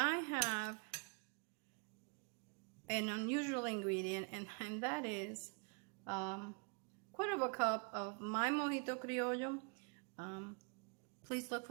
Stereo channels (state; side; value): quieter; left; 36.7 dB